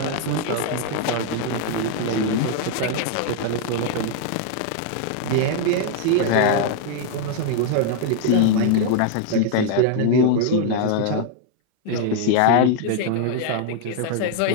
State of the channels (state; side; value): different; both; correlation 0.00